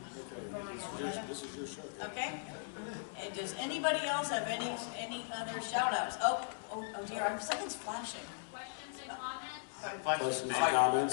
Okay, this is your show. Okay? And does anybody else have any other shout outs? Oh dear, something's flashing. questions and comments. Questions and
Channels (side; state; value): right; silent; digital silence